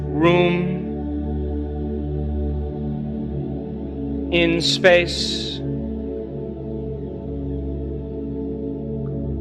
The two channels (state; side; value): identical; both; correlation 1.00